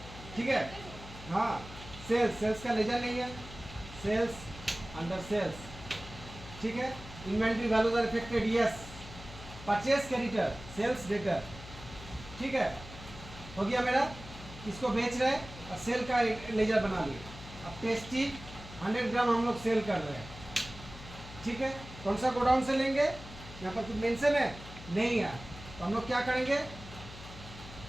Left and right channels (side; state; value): left; noise; hum, 15 dB below the sound